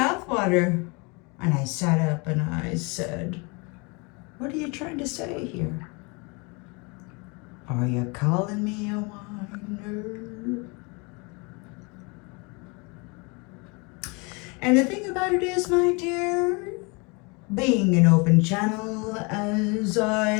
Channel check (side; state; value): right; quieter; 30.0 dB